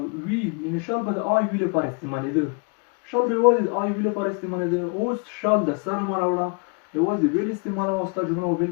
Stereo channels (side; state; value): right; quieter; 34.3 dB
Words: وی یعنی شال به د I U لپاره استعمالېده شال به یوازې د I U لپاره استعمالېده اوس شال د سره مه راوړه یوازې will استعمالوه او ستا جمله به